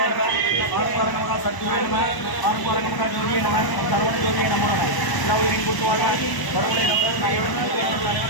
நம ஆரங்கமகா சத்குருவே நம ஆரங்கமகா ஜோதியே நம சரவண ஜோதியே நம எல்லா உயிரின் கூட்டுவாக வரவுடைய நமது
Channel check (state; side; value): late; right; 1.0 ms